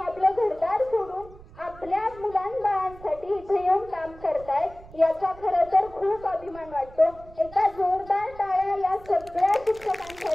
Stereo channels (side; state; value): right; noise; rumble, 20 dB below the sound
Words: घरदार सोडून आपल्या मुलांबाळांसाठी इथे येऊन काम करतायत, याचा खरं तर खूप अभिमान वाटतो। एका जोरदार टाळ्या या सगळ्या